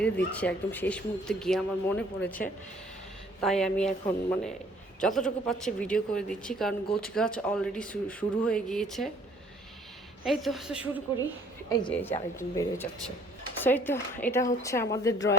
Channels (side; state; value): both; normal; correlation 0.59